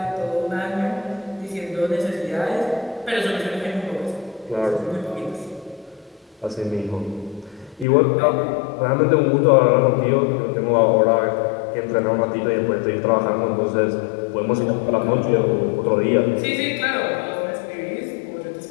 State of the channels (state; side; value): drops out; right; at 7.9 s